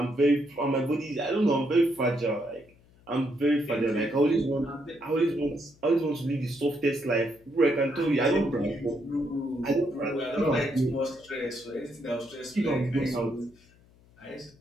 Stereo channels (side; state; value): left; noise; hum, 29 dB below the sound